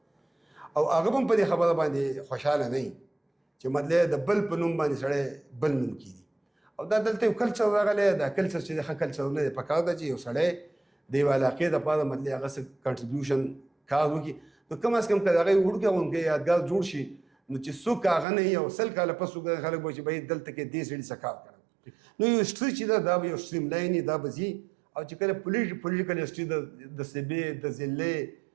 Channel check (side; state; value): left; drops out; at 18.2 s